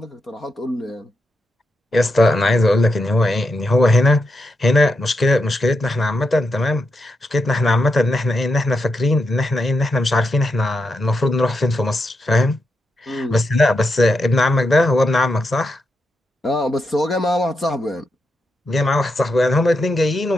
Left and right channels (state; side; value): normal; both; correlation 0.85